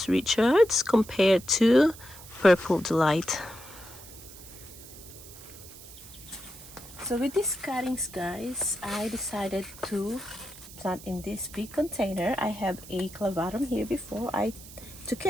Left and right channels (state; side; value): noise; right; hiss, 17 dB below the sound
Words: Richards compared to Purple Delight. So with these cuttings, guys, I decided to plant in this big container. I have a clavatum here before. I took